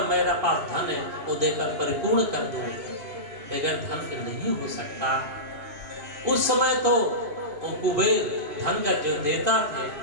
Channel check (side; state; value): left; late; 2.9 ms